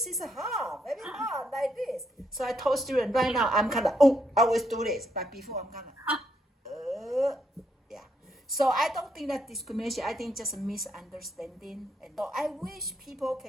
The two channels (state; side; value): normal; both; correlation 0.76